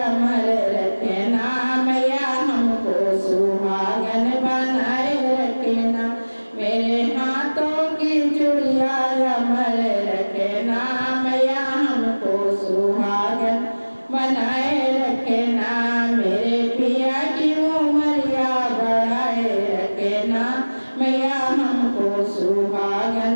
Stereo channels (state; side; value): inverted; both; correlation -1.00